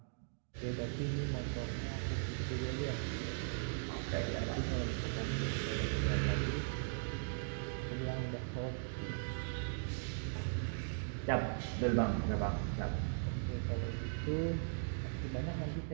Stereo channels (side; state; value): left; silent; digital silence